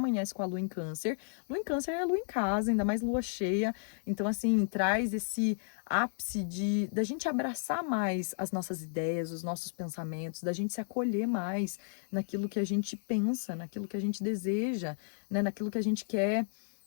com a lua em Câncer. Lua em Câncer é lua em casa, ainda mais lua cheia. Então, assim, traz esse ápice da gente abraçar mais as nossas ideias, os nossos pensamentos, da gente se acolher mais naquilo que a gente pensa, naquilo que a gente deseja, né, naquilo que a gente quer,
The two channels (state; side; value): silent; right; digital silence